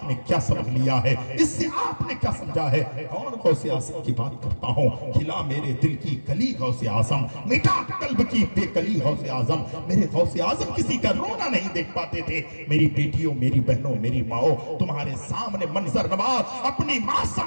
क्या समझ लिया है? इससे आपने क्या समझा है? और गौसे आजम की बात करता हूँ, खिला मेरे दिल की कली गौसे आजम, मिटा कल्ब की बेकली गौसे आजम। मेरे गौसे आजम किसी का रोना नहीं देख पाते थे। मेरी बेटियों, मेरी बहनों, मेरी माओ, तुम्हारे सामने मंजर नवाज अपनी माँ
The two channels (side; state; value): both; inverted; correlation -1.00